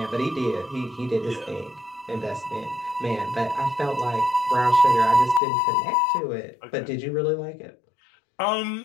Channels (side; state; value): right; drops out; at 5.4 s